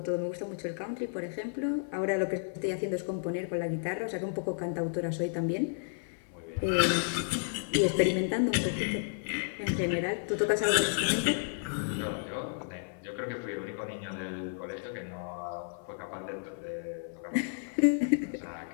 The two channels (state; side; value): silent; right; 56 dB below the other